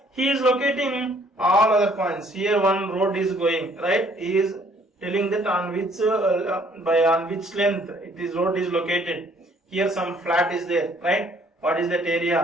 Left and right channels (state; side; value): normal; both; correlation 0.61